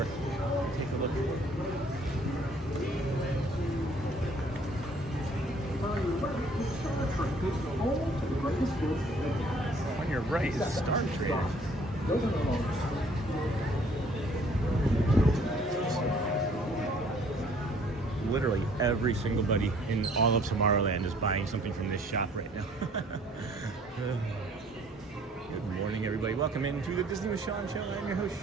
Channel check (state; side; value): normal; both; correlation 0.58